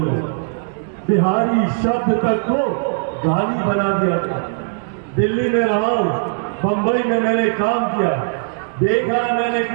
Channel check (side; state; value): left; silent; digital silence